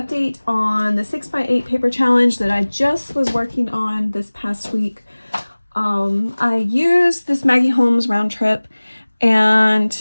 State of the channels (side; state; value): both; inverted; correlation -1.00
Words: on the 6x8 paper challenge that I just was working on this past week. I used this Maggie Holmes round trip,